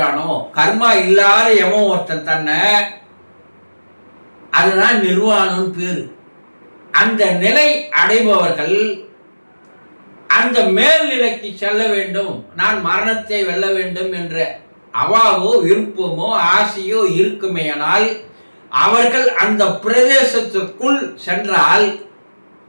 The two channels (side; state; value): both; inverted; correlation -1.00